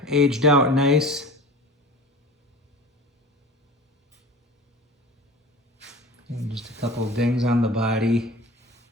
aged out nice. And just a couple of dings on the body.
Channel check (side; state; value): both; normal; correlation 0.39